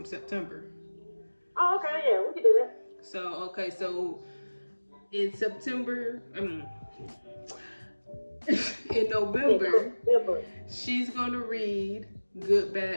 September. Oh, okay, yeah, we can do that. So in September, in November, she's gonna read Good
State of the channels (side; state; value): both; inverted; correlation -1.00